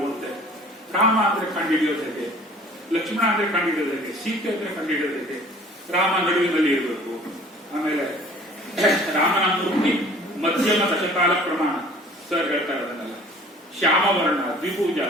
ಓದ್ತೇನೆ. ರಾಮ ಅಂದ್ರೆ ಕಂಡುಹಿಡಿಯೋದು ಹೇಗೆ, ಲಕ್ಷ್ಮಣ ಅಂದ್ರೆ ಕಂಡುಹಿಡಿಯೋದು ಹೇಗೆ, ಸೀತೆ ಅಂದ್ರೆ ಕಂಡುಹಿಡಿಯೋದು ಹೇಗೆ, ರಾಮ ನಡುವಿನಲ್ಲಿ ಇರಬೇಕು. ಆಮೇಲೆ ರಾಮನ ಮೂರ್ತಿ ಮಧ್ಯಮ ದಶಕಾಲ ಪ್ರಮಾಣ ಸರ್ ಹೇಳ್ತಾರೆ, ಅದನ್ನೆಲ್ಲ ಶ್ಯಾಮವರ್ಣ, ದ್ವಿಭುಜ,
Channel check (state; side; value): normal; both; correlation 0.49